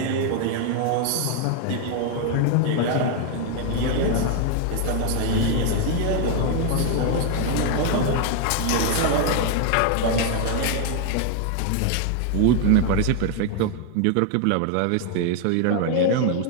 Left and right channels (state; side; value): different; both; correlation 0.00